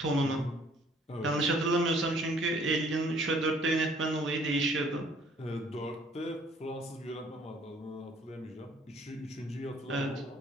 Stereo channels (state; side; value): normal; both; correlation 0.59